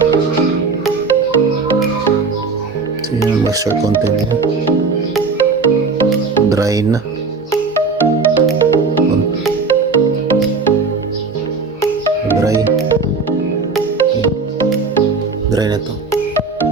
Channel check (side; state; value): left; quieter; 4.4 dB